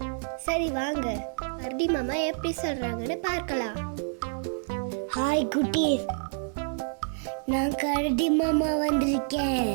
சரி வாங்க, கரடி மாமா எப்படி சொல்றாங்கன்னு பார்க்கலாம். ஹாய் குட்டீஸ், நான் கரடி மாமா வந்திருக்கேன்.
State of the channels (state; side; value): silent; left; digital silence